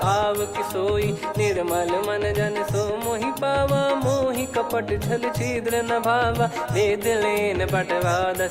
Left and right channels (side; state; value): both; identical; correlation 1.00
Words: आव किसोई, निर्मल मन जन सो मोहि पावा, मोहि कपट छल छिद्र न भावा, वेद लेन बटवा